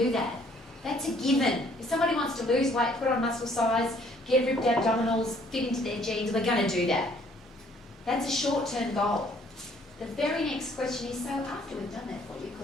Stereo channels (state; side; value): normal; both; correlation 0.61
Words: that. That's a given. If somebody wants to lose weight, put on muscle size, get ripped abdominals, fit into their jeans, we're going to do that. That's a short-term goal. The very next question is, so after we've done that for you,